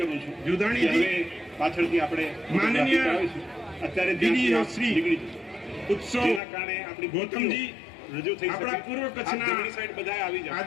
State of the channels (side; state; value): right; drops out; at 6.4 s